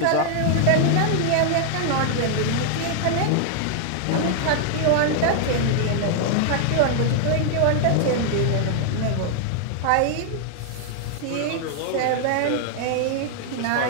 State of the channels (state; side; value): different; both; correlation 0.00